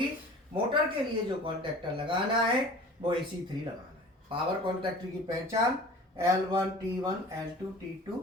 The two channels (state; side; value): normal; both; correlation 0.43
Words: मोटर के लिए जो कॉन्ट्रैक्टर लगाना है वो AC3 लगाना है। पावर कॉन्ट्रैक्टर की पहचान L1 T1 L2 T2